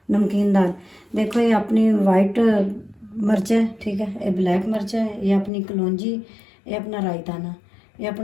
नमकीन दाल देखो, ये अपनी वाइट मिर्च है, ठीक है, ये ब्लैक मिर्च है, ये अपनी कलौंजी, ये अपना रायताना, ये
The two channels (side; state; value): right; drops out; at 5.5 s